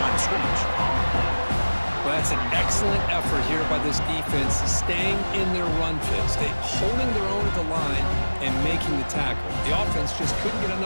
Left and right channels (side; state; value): both; inverted; correlation -1.00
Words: of scrimmage. Well, that's an excellent effort here by this defense, staying in their run fits. They holding their own at the line and making the tackle. The offense just couldn't get